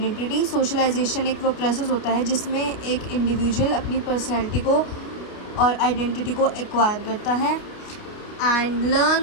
Socialization एक वो प्रोसेस होता है जिसमें एक इंडिविजुअल अपनी पर्सनैलिटी को और आइडेंटिटी को एक्वायर करता है। And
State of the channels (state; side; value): late; right; 29 ms